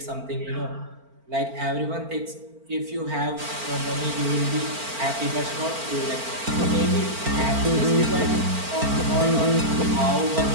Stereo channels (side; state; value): left; late; 4.4 ms